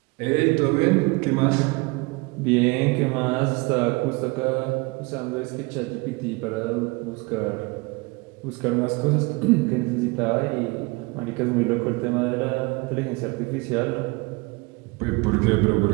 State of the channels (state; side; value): quieter; left; 26.4 dB